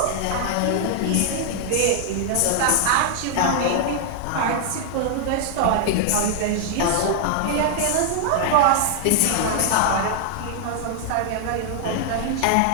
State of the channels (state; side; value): different; both; correlation -0.01